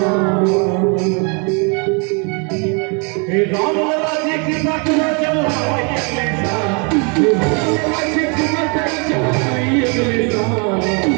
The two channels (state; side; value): quieter; left; 35.0 dB